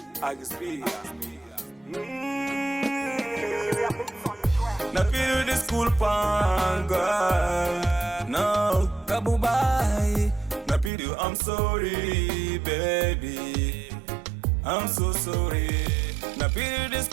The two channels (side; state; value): left; drops out; at 10.9 s